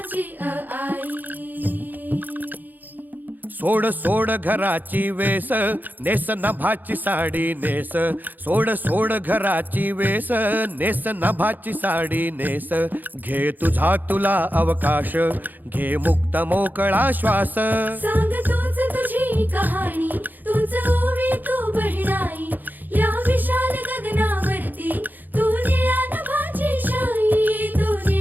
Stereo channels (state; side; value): late; left; 0.086 ms